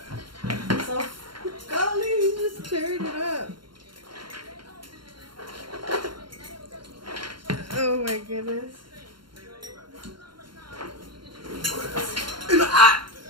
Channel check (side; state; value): left; late; 0.72 ms